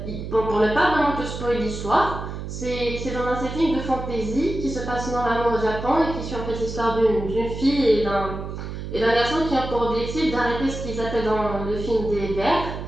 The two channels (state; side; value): noise; right; hum, 7 dB below the sound